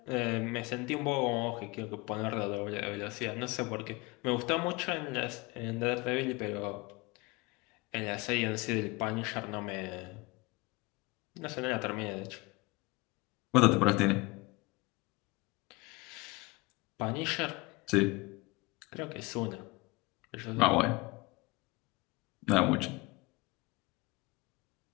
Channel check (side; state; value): right; quieter; 24.3 dB